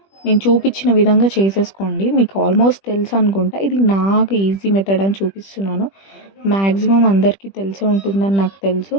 నేను చూపించిన విధంగా చేసేసుకోండి. మీకు ఆల్మోస్ట్ తెలుసు అనుకుంటా. ఇది నాకు ఈజీ మెథడ్ అని చూపిస్తున్నాను. మ్యాక్సిమం అందరికీ తెలిసే ఉంటుందని నాకు తెలుసు.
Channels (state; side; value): late; right; 20 ms